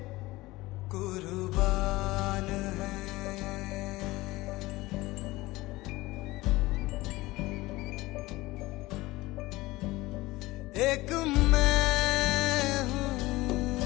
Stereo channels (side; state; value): right; quieter; 19.6 dB